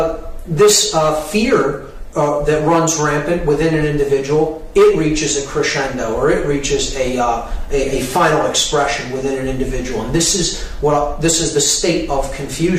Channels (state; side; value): identical; both; correlation 1.00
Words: This fear that runs rampant within an individual, it reaches a crescendo, or it reaches a final expression within an individual, and this is the state of